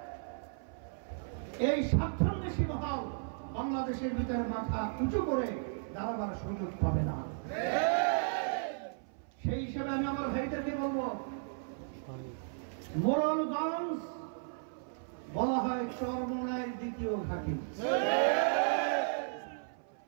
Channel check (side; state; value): left; silent; 55 dB below the other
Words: এই স্বার্থন্বেষী মহল বাংলাদেশের ভিতরে মাথা উঁচু করে দাঁড়াবার সুযোগ পাবে না। সেই হিসাবে আমি আমার ভাইদেরকে বলবো, মোরলগঞ্জ বলা হয় চরমোনাইয়ের দ্বিতীয় ঘাঁটি।